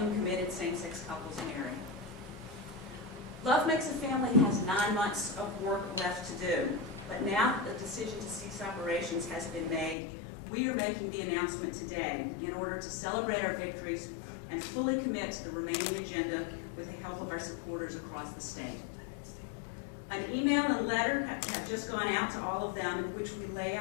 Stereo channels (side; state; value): right; drops out; at 10.0 s